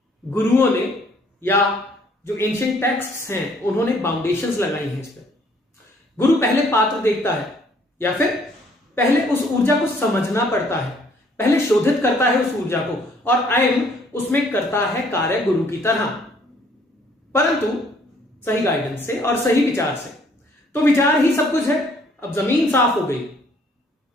गुरुओं ने या जो एंशिएंट टेक्स्ट्स हैं उन्होंने बाउंडेशंस लगाई हैं इस पर। गुरु पहले पात्र देखता है या फिर पहले उस ऊर्जा को समझना पड़ता है, पहले शोधित करता है उस ऊर्जा को, और आयम उसमें करता है कार्य गुरु की तरह, परंतु सही गाइडेंस से और सही विचार से। तो विचार ही सब कुछ है। अब जमीन साफ हो गई,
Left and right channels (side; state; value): both; normal; correlation 0.62